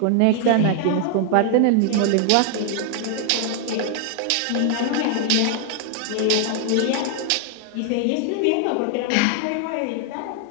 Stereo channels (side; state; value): both; different; correlation 0.00